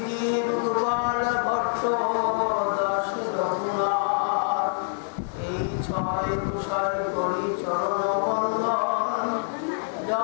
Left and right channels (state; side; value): silent; right; 56 dB below the other